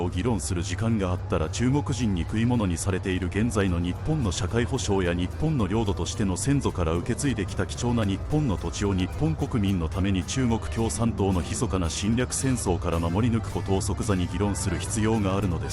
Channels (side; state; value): both; identical; correlation 1.00